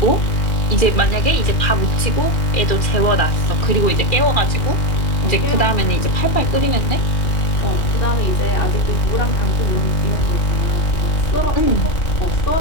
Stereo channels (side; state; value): right; late; 2.4 ms